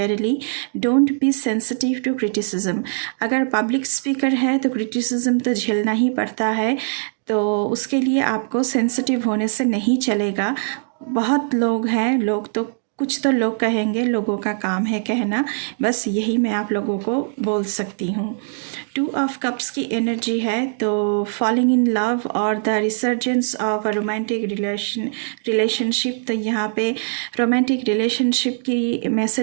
Don't be sensitive to criticism, अगर पब्लिक स्पीकर है तो क्रिटिसिज्म तो झेलना ही पड़ता है, तो उसके लिए आपको सेंसिटिव होने से नहीं चलेगा। बहुत लोग हैं, लोग तो कुछ तो लोग कहेंगे, लोगों का काम है कहना, बस यही मैं आप लोगों को बोल सकती हूँ। 2 ऑफ कप्स की एनर्जी है, तो फॉलिंग इन लव और the resurgence of a romantic relationship. तो यहाँ पे रोमांटिक रिलेशनशिप की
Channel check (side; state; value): left; silent; digital silence